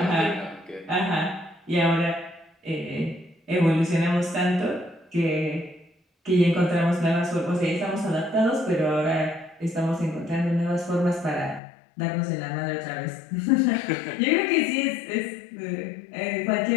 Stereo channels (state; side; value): drops out; right; at 11.6 s